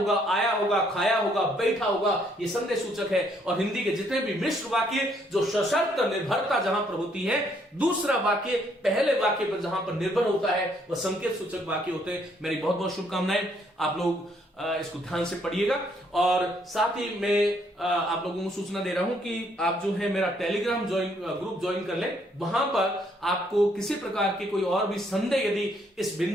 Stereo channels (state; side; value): normal; both; correlation 0.69